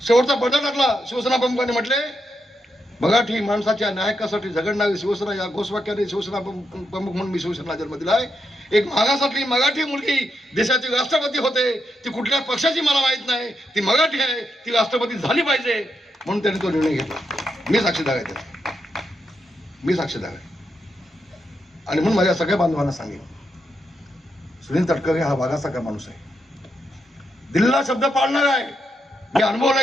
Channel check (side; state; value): both; normal; correlation 0.82